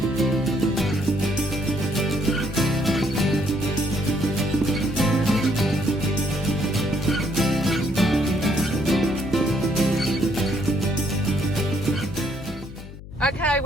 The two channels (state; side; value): noise; left; hum, 15 dB below the sound